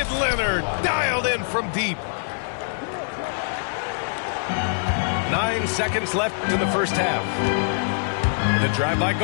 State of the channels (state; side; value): silent; right; digital silence